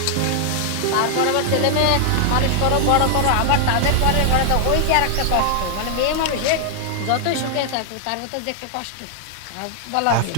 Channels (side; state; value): both; different; correlation 0.00